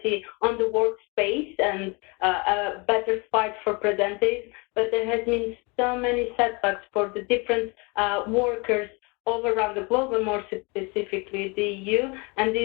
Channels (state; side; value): quieter; right; 29.1 dB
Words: on the workspace and a better fight for preventive, but there has been so many setbacks for the different workers all around the globe, and more specifically the EU. And